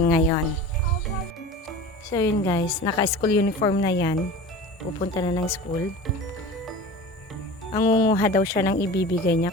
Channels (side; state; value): both; normal; correlation 0.36